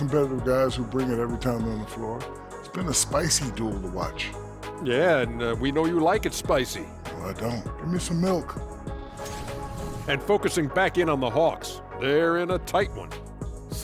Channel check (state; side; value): identical; both; correlation 1.00